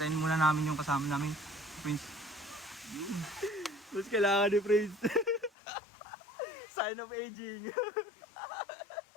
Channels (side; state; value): right; drops out; at 5.5 s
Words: muna namin yung kasama namin. Prince. Mas kailangan ni Prince. Sign of aging.